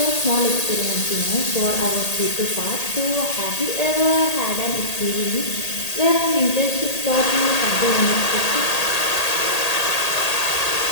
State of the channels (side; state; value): right; late; 1.8 ms